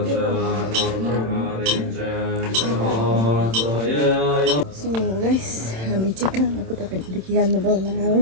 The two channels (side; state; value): left; late; 27 ms